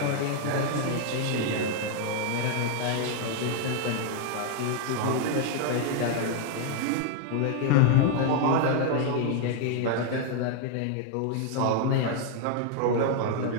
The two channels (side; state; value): both; different; correlation 0.00